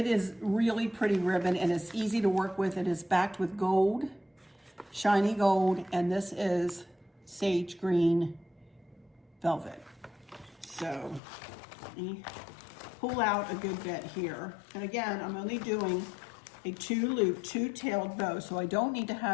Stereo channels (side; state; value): right; drops out; at 11.2 s